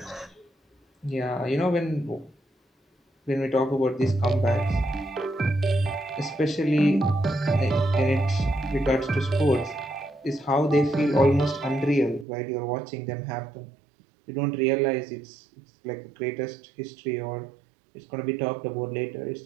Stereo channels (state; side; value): drops out; left; at 12.2 s